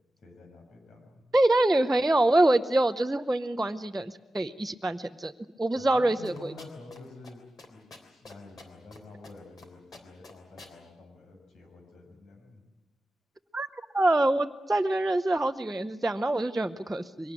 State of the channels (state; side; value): normal; both; correlation 0.94